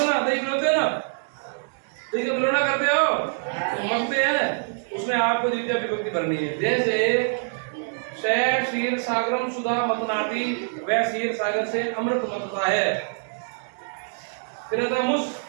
पिलाते हैं ना, दही का पिलौना करते हो तो मगते हैं, उसमें आपको द्वितीय विभक्ति भरनी है। जैसे क्षीर सागरम सुधा मतनाती, वह क्षीर सागर से अमृत मतता है। फिर आता है मुस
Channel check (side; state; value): left; silent; digital silence